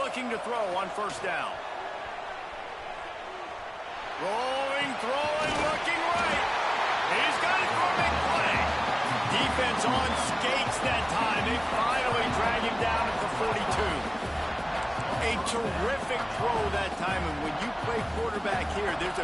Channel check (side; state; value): both; identical; correlation 1.00